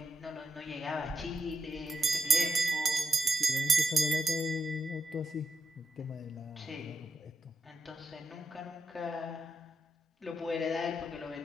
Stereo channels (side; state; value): both; normal; correlation 0.84